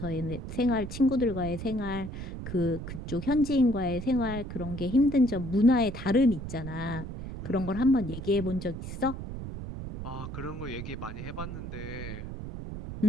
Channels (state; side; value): noise; right; rumble, 8 dB below the sound